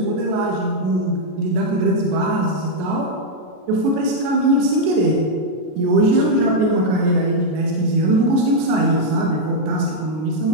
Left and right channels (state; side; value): late; left; 33 ms